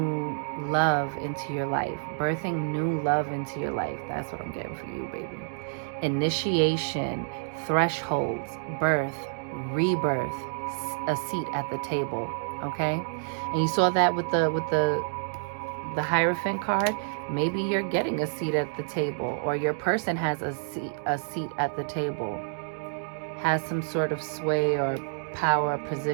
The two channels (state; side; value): silent; left; digital silence